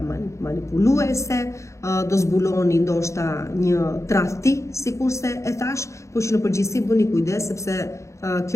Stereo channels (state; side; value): late; right; 0.14 ms